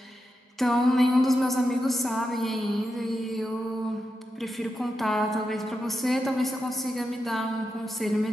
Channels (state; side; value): normal; both; correlation 0.88